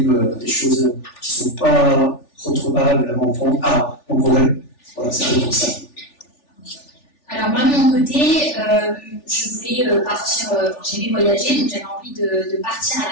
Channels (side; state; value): right; late; 3.4 ms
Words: des choses qui ne sont pas retrouvables en Corée. Voilà, c'est pour ça. Alors moi de mon côté, je voulais partir, j'aimais voyager, donc j'avais envie de partir à